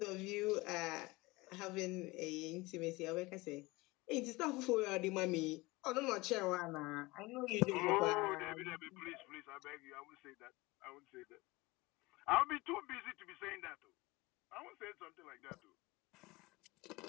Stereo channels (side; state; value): right; quieter; 22.3 dB